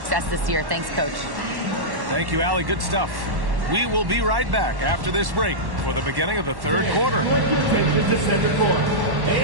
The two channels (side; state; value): left; late; 1.1 ms